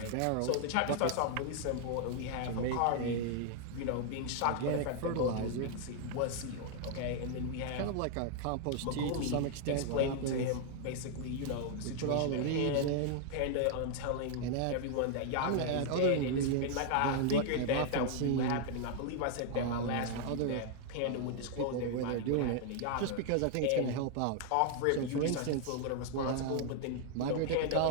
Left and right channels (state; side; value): different; both; correlation 0.00